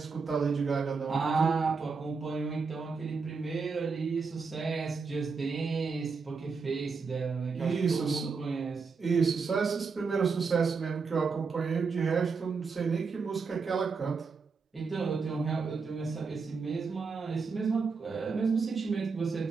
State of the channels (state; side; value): quieter; left; 4.9 dB